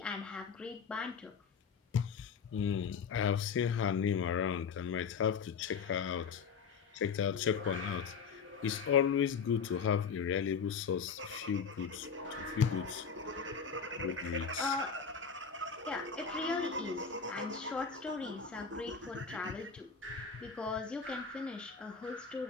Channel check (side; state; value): right; quieter; 6.1 dB